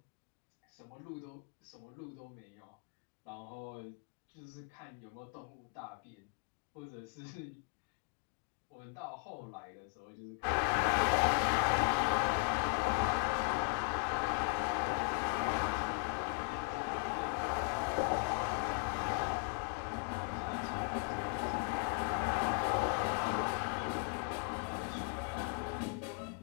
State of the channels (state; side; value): quieter; right; 38.6 dB